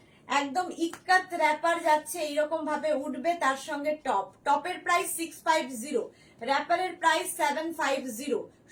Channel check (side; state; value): both; identical; correlation 1.00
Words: একদম ইক্কাত র্যাপার যাচ্ছে, এইরকম ভাবে উঠবে, তার সঙ্গে টপ, টপের প্রাইস 650, র্যাপারের প্রাইস 750।